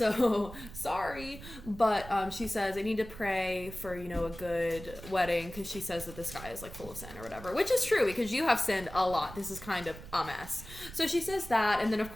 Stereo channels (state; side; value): noise; right; rumble, 14 dB below the sound